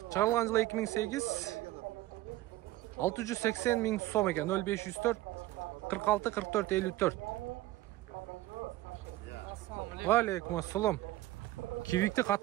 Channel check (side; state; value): left; quieter; 16.5 dB